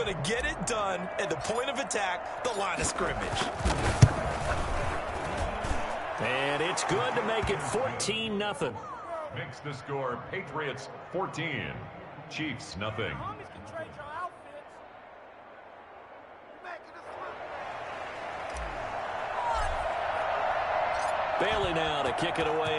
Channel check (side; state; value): both; identical; correlation 1.00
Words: to get it done at the point of attack, the line of scrimmage. And it's good to make it 14-0. Makes the score Patriots 14, Chiefs nothing. Bailey now to kick it away